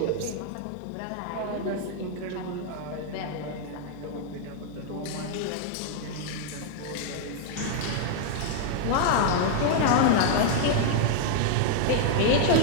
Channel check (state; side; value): different; both; correlation 0.00